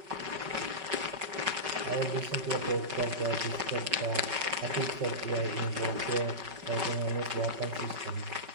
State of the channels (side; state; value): left; late; 5.3 ms